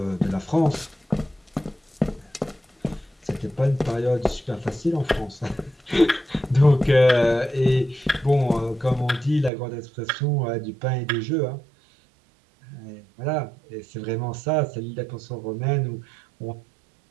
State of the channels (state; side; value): drops out; left; at 9.5 s